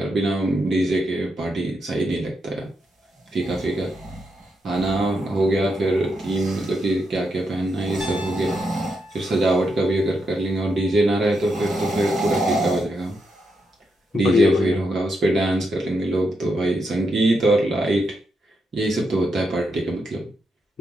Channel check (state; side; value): normal; both; correlation 0.82